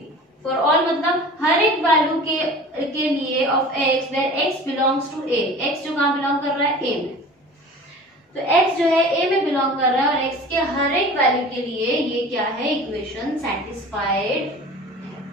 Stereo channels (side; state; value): both; normal; correlation 0.40